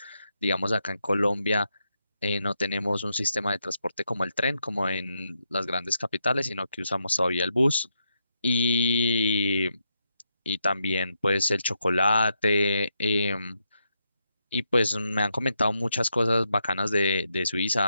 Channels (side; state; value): both; inverted; correlation -0.82